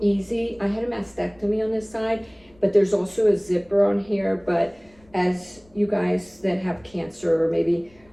easy. I had a mastectomy on this side, but there's also a zipper on here. But as you guys that have cancer, or maybe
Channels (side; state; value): left; noise; rumble, 30 dB below the sound